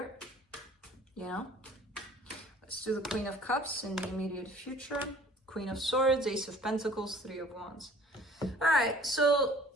You know? Let's do the Queen of Cups in the immediate future. Queen of Swords, Ace of Pentacles, Three of Wands. All right, so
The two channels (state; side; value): normal; both; correlation 0.51